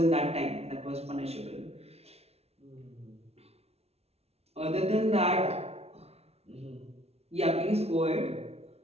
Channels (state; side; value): late; left; 0.30 ms